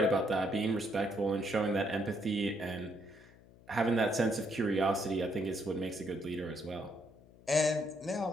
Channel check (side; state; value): left; noise; hum, 24 dB below the sound